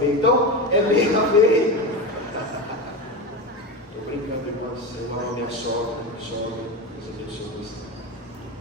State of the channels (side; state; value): both; normal; correlation 0.21